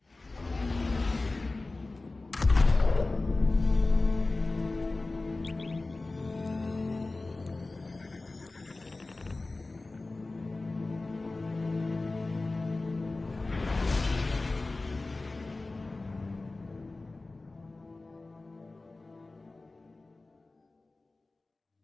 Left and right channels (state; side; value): quieter; right; 3.2 dB